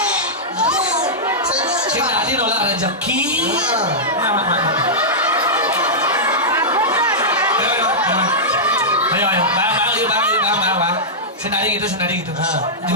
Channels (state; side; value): normal; both; correlation -0.11